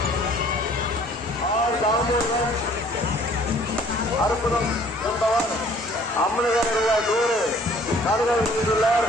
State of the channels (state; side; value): normal; both; correlation 0.56